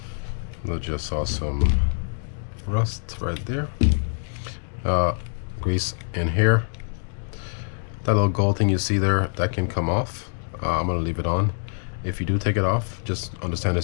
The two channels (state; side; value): silent; right; digital silence